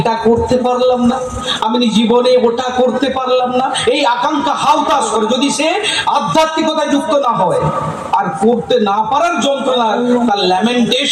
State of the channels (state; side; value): identical; both; correlation 1.00